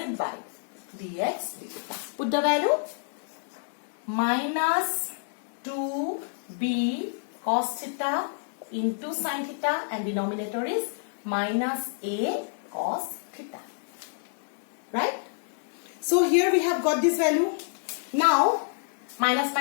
by dx d theta. Put the value minus 2b cos theta into sin theta and denominator is minus a cos theta. Right? So here we have got this value. Now minus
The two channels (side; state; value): right; silent; digital silence